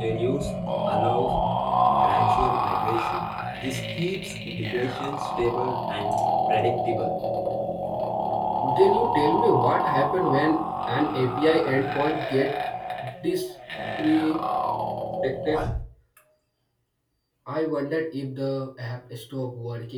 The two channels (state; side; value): identical; both; correlation 1.00